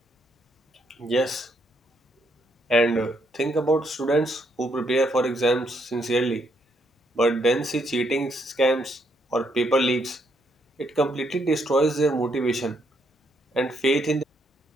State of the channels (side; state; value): both; normal; correlation 0.74